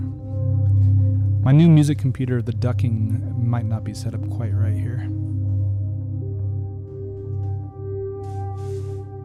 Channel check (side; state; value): both; identical; correlation 1.00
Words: My new music computer, the ducking might not be set up quite right here.